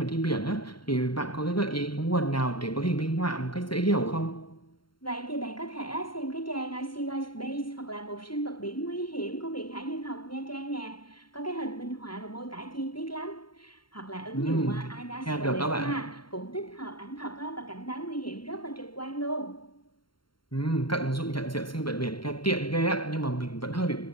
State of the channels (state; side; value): late; right; 0.73 ms